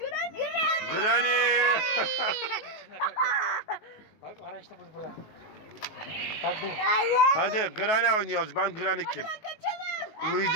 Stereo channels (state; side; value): late; right; 19 ms